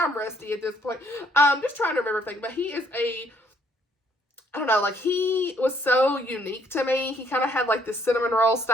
rusty at this point. Just trying to remember everything. But he is I don't know, like, he was so unique to me. He kind of had, like, this cinnamon roll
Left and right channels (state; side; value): normal; both; correlation 0.67